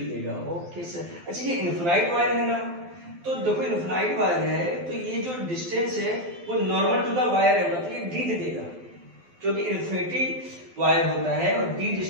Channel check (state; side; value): late; left; 12 ms